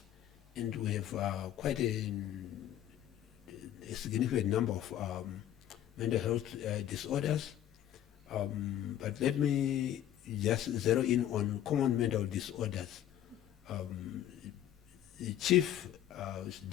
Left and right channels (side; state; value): right; quieter; 11.6 dB